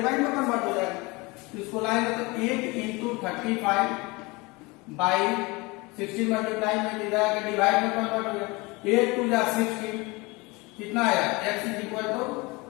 में कन्वर्ट हो जाएगा। तो इसको लाएंगे तो 8 into 35 बाई 16 मल्टीप्लाई में इधर आके डिवाइड में कन्वर्ट हो जाएगा। 8 2 जा 16 कितना आया, x is equal to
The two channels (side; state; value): right; quieter; 24.9 dB